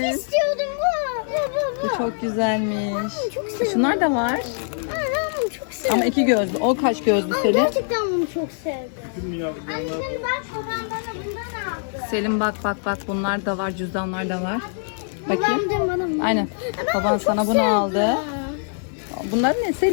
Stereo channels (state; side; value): silent; right; digital silence